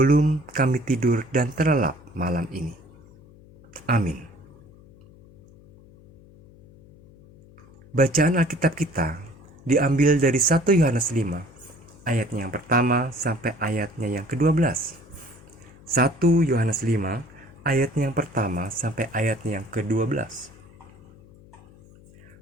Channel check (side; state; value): left; noise; hum, 24 dB below the sound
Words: kami tidur dan terlelap malam ini. Amin. Bacaan Alkitab kita diambil dari 1 Yohanes 5, ayatnya yang pertama sampai ayatnya yang ke-12. 1 Yohanes 5, ayatnya yang pertama sampai ayatnya yang ke-12.